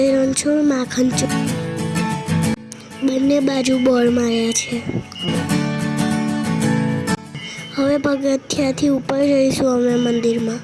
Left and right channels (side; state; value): both; identical; correlation 1.00